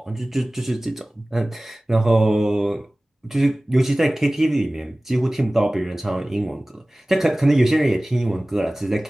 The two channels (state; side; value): normal; both; correlation 0.98